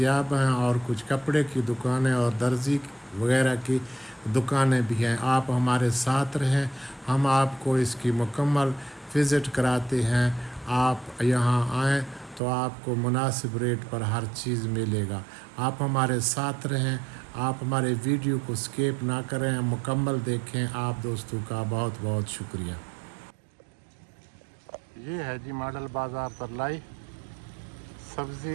हैं, और कुछ कपड़े की दुकानें और दर्जी वगैरह की दुकानें भी हैं। आप हमारे साथ रहें, हम आपको इसकी मुकम्मल विज़िट कराते हैं। आप यहाँ आएँ तो आपको मुनासिब रेट पर हर चीज़ मिलेगा। आप हमारे साथ रहें, आप हमारे वीडियो को स्किप ना करें, मुकम्मल देखें। आप दोस्तों का बहुत बहुत शुक्रिया। ये है जी मॉडल बाज़ार तरलाई,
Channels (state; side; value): drops out; left; at 12.4 s